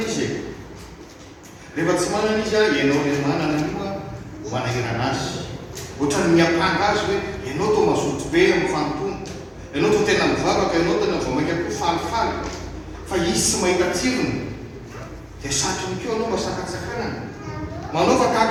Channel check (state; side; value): identical; both; correlation 1.00